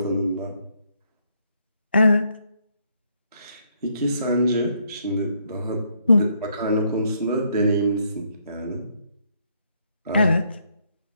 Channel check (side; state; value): both; inverted; correlation -0.72